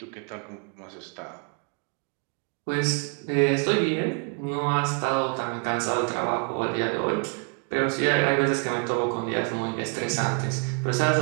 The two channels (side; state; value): left; quieter; 38.5 dB